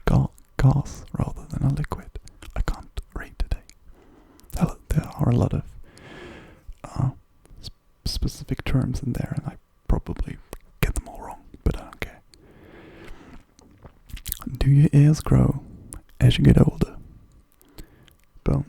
gas rather than a liquid. I can't read today. There are a lot of specific terms in there, and I probably get them do your ears grow as you get older?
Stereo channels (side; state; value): both; identical; correlation 1.00